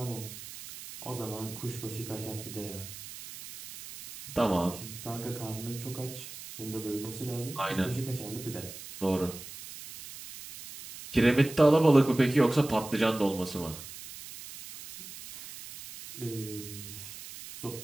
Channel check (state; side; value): noise; right; hiss, 13 dB below the sound